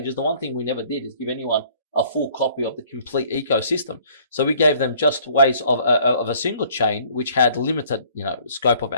the one thing we never did is give anyone a full copy of the complete ecosystem. So we gave them just ways of a single chain, which had limited, scope of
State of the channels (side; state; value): both; inverted; correlation -0.56